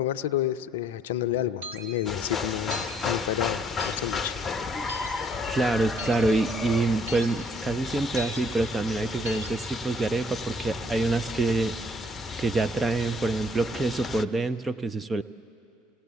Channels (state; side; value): normal; both; correlation 0.64